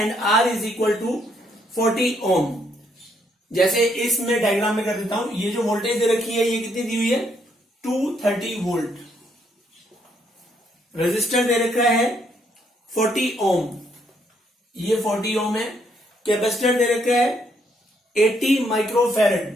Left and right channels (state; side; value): normal; both; correlation 0.72